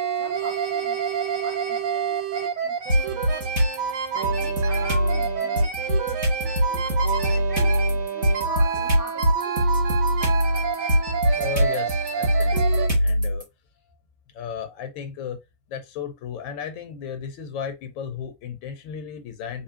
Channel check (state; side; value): inverted; both; correlation -0.65